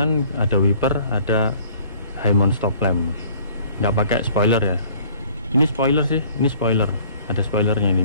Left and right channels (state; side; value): inverted; both; correlation -0.54